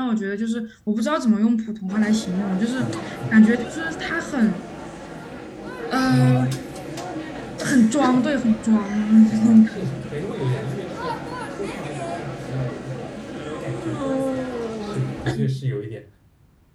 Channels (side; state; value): both; identical; correlation 1.00